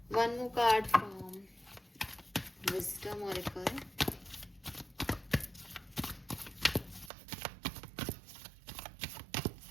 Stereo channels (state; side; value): drops out; left; at 7.1 s